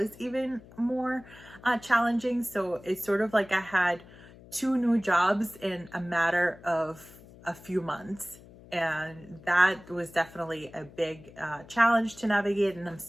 even more challenging. So it's sort of like I had two new jobs in a matter of a few months. And that was definitely a big challenge to navigate. And I'm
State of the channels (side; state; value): left; noise; hum, 21 dB below the sound